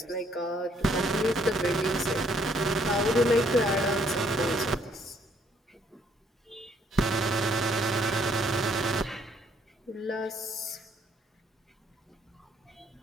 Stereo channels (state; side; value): normal; both; correlation 0.66